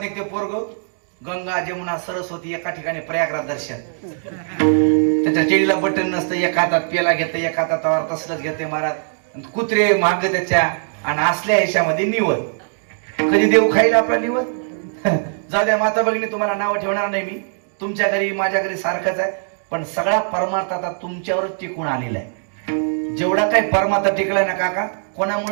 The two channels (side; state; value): left; silent; digital silence